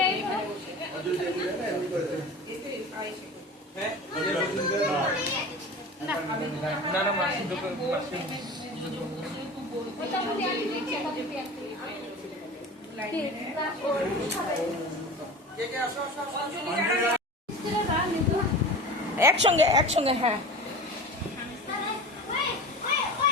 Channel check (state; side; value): normal; both; correlation 0.34